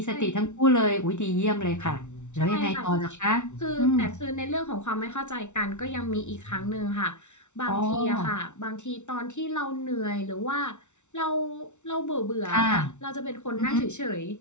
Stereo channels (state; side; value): late; right; 0.83 ms